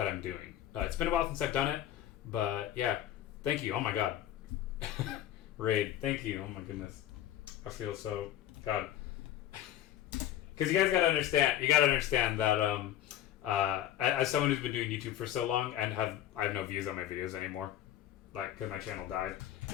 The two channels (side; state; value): right; quieter; 12.0 dB